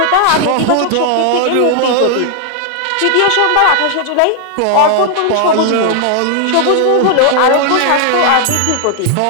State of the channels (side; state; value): both; different; correlation 0.00